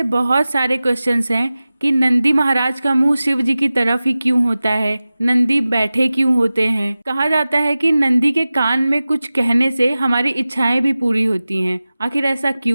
बहुत सारे क्वेश्चंस हैं कि नंदी महाराज का मुंह शिव जी की तरफ ही क्यों होता है, नंदी बैठे क्यों होते हैं। कहा जाता है कि नंदी के कान में कुछ कहने से हमारी इच्छाएं भी पूरी होती हैं। आखिर ऐसा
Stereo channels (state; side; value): inverted; both; correlation -0.96